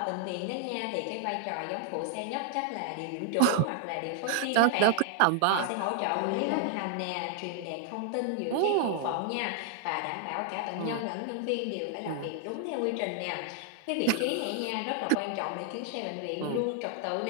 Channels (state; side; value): different; both; correlation 0.00